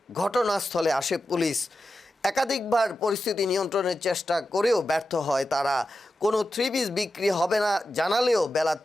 ঘটনাস্থলে আসে পুলিশ। একাধিকবার পরিস্থিতি নিয়ন্ত্রণের চেষ্টা করেও ব্যর্থ হয় তারা। কোনো 3 পিস বিক্রি হবে না জানালেও বেলা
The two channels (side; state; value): both; normal; correlation 0.91